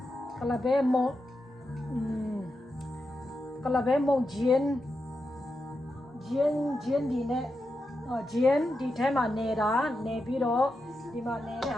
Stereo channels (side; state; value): both; normal; correlation 0.88